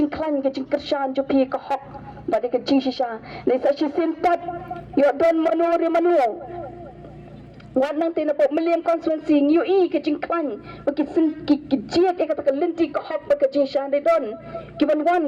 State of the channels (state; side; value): identical; both; correlation 1.00